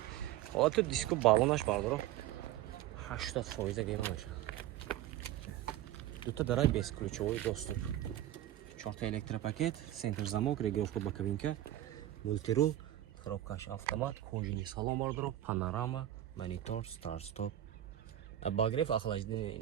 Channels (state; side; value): quieter; left; 13.1 dB